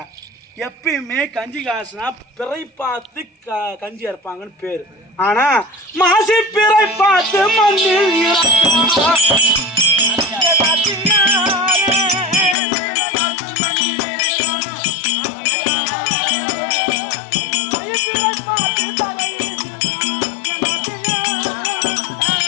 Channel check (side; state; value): right; drops out; at 12.6 s